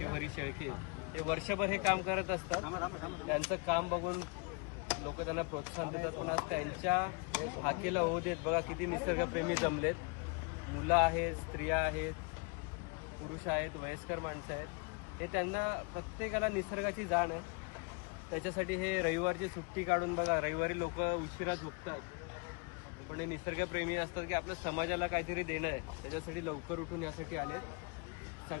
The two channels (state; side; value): quieter; right; 33.5 dB